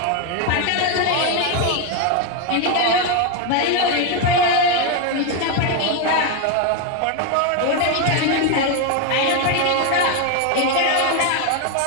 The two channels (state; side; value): different; both; correlation 0.01